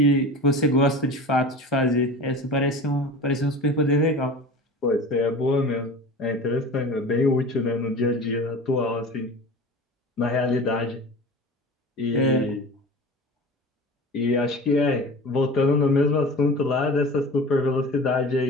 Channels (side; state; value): both; normal; correlation 0.36